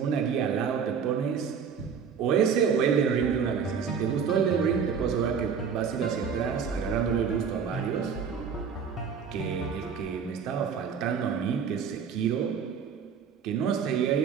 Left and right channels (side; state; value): left; quieter; 6.7 dB